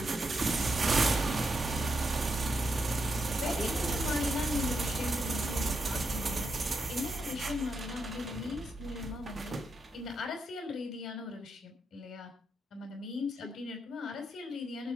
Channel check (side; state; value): both; normal; correlation 0.82